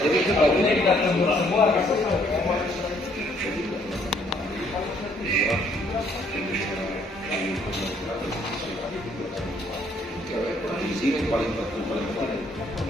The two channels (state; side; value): normal; both; correlation 0.66